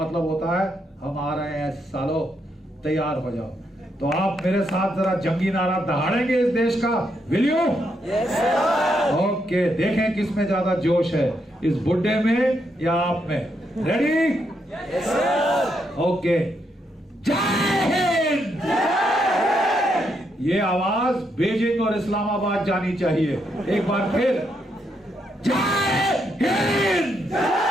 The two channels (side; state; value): both; normal; correlation 0.78